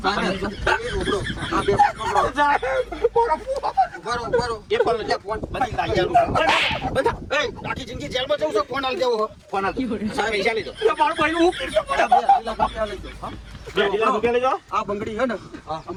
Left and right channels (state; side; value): identical; both; correlation 1.00